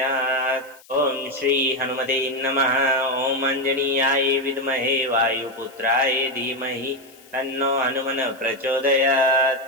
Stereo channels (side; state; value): left; noise; hiss, 25 dB below the sound